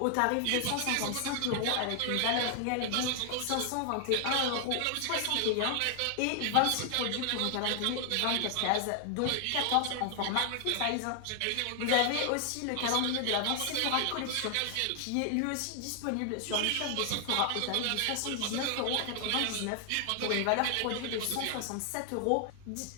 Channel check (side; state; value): both; different; correlation 0.00